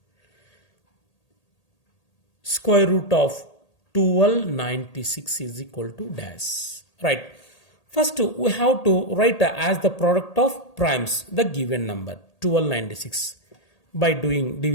Square root of 1296 is equal to dash. Right. First, we have to write as the product of primes the given number 1296 by doing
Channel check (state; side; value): late; right; 1.8 ms